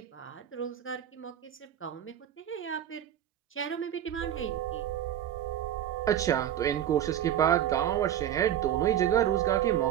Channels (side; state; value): left; quieter; 10.8 dB